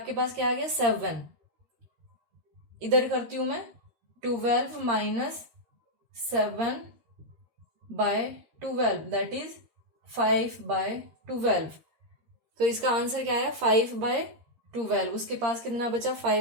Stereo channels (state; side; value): late; left; 13 ms